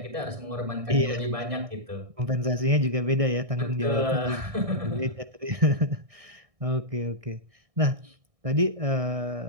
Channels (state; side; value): late; left; 1.6 ms